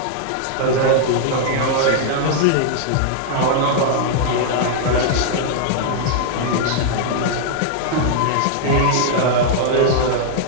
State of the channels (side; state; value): both; different; correlation -0.01